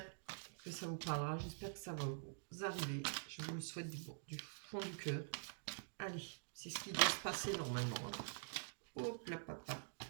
que ça vous parlera, j'espère que ça va vous arriver. Je vous le souhaite du fond du cœur. Allez, c'est ce qui doit se passer normalement. Hein. Hop là, papa.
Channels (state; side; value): silent; left; digital silence